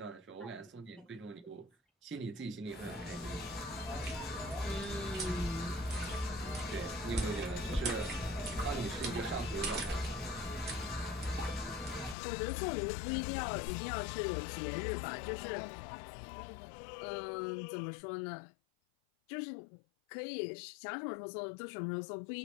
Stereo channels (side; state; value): right; drops out; at 12.2 s